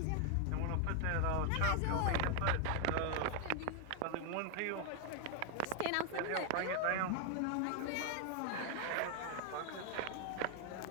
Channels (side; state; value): both; different; correlation 0.00